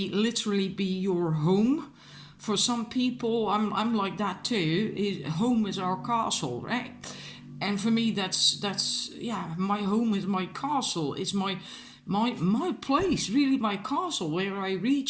literally be your home. For some people, I'm like that too. Home is our castle, right? And for me, that's my home is my castle. It's my place, really, my castle, where I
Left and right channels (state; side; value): identical; both; correlation 1.00